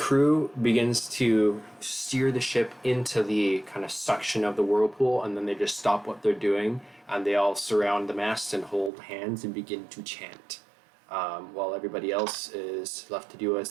begins to steer the ship into the kind of suction of the whirlpool, and then they just stop what they're doing, and they all surround the mast and hold hands and begin to chant, while everybody else is left to do as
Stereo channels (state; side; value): drops out; left; at 8.9 s